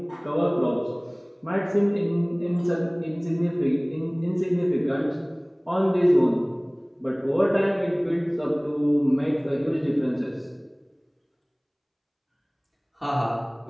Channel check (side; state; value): both; identical; correlation 1.00